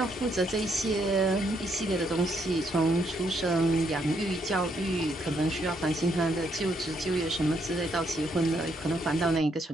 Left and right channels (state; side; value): normal; both; correlation 0.74